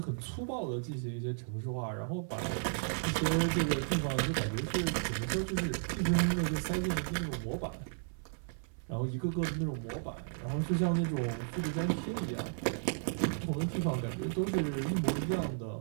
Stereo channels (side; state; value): left; silent; 55 dB below the other